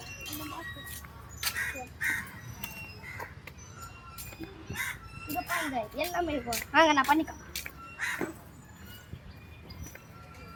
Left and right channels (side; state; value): both; identical; correlation 1.00